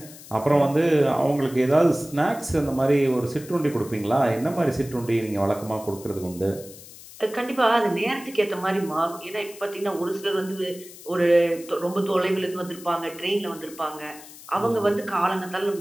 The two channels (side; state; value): left; noise; hiss, 18 dB below the sound